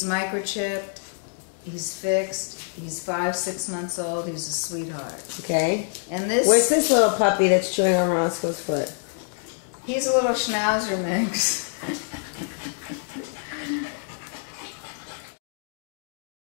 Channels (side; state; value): right; silent; digital silence